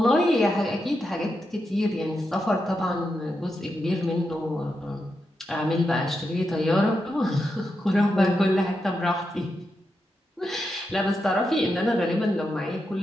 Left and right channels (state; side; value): normal; both; correlation 0.86